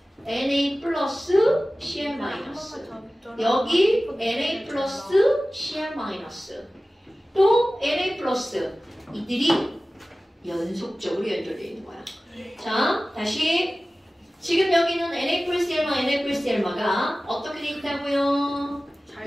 Na 플러스 Cl 마이너스 여기 Na 플러스 Cl 마이너스 또 Na 플러스 이들이 연속적으로 연결되어 있는 거야. 자, 다시 지금 여기는 Na 플러스 L마 Na 플러스 L마가 어떻게 돼 있다고요?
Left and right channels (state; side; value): normal; both; correlation 0.97